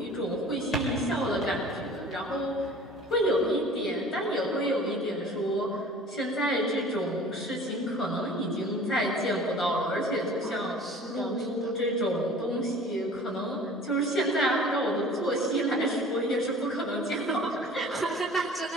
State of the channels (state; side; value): normal; both; correlation 0.45